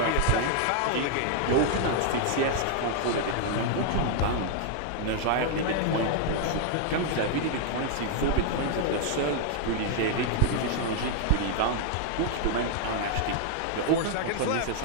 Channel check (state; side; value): different; both; correlation 0.00